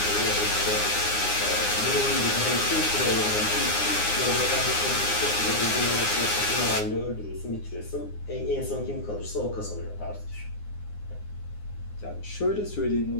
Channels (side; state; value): right; late; 9.7 ms